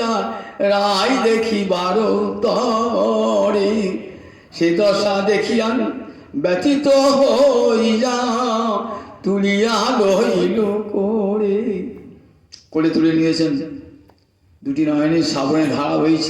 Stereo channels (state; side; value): identical; both; correlation 1.00